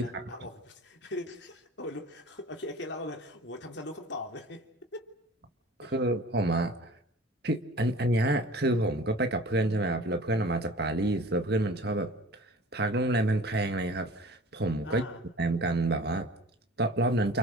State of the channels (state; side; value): normal; both; correlation 0.44